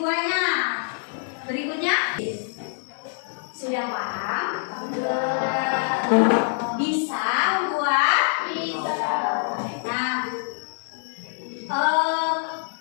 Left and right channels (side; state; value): right; silent; 62 dB below the other